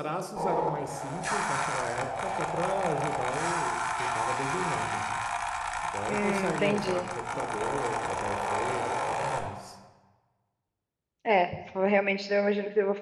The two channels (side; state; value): both; identical; correlation 1.00